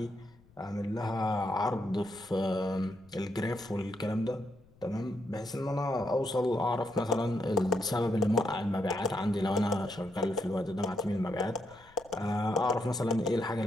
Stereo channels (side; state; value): left; noise; rumble, 28 dB below the sound